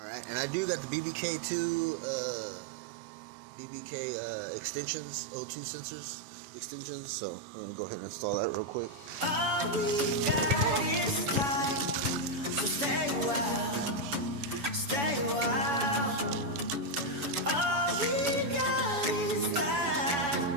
and I do got the BBK2 extensions, O2 sensors extensions, so I'm gonna go ahead and install that real quick. All we got is time, so stay a while, stay a while. All we got is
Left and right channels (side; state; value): left; late; 7.0 ms